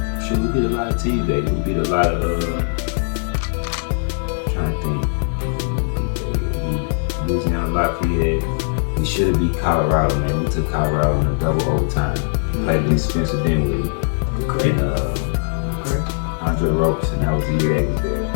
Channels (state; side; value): silent; right; 65 dB below the other